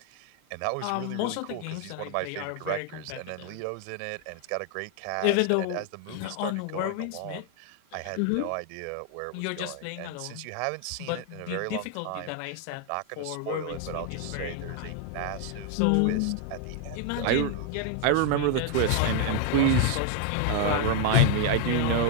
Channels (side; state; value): both; different; correlation 0.01